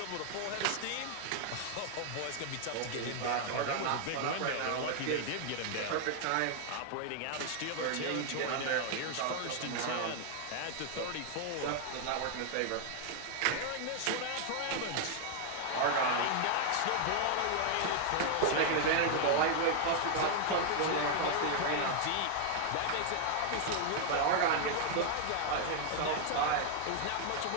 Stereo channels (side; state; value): both; different; correlation 0.00